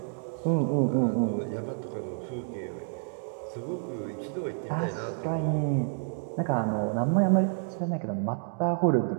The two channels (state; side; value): silent; left; digital silence